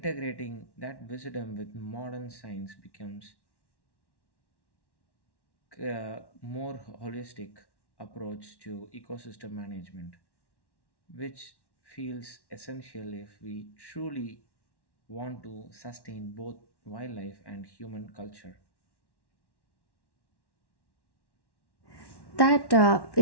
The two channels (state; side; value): late; right; 1.1 ms